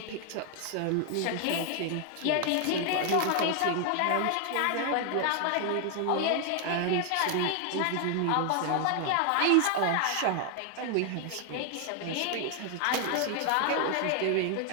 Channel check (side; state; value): both; different; correlation 0.00